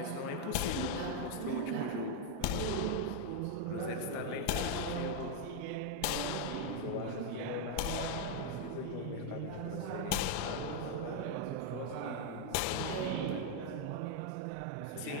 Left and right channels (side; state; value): both; different; correlation 0.00